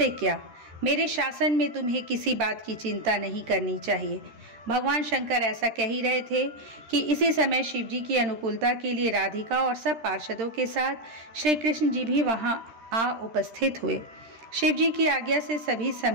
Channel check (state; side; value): late; left; 13 ms